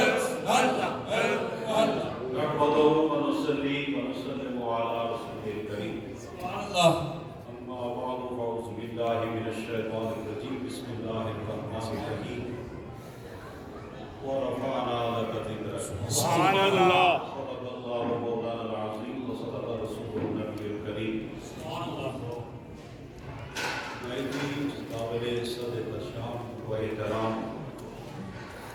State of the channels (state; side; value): identical; both; correlation 1.00